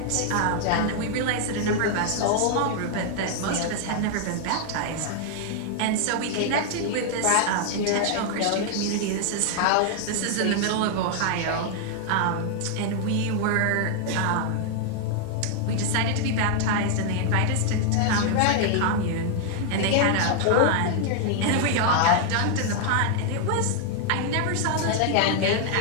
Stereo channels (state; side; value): different; both; correlation 0.00